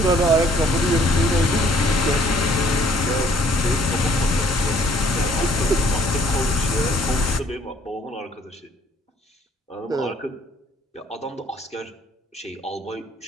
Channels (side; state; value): both; normal; correlation 0.61